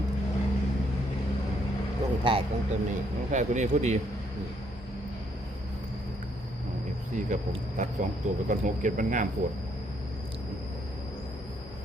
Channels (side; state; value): both; normal; correlation 0.71